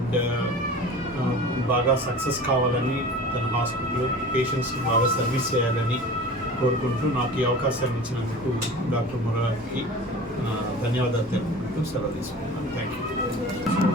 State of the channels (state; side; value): normal; both; correlation 0.38